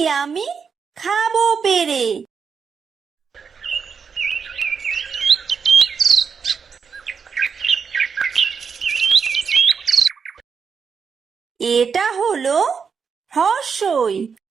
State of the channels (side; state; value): left; quieter; 6.1 dB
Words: আমি খাবো পেরে। এটা হলো হ্রস্বই।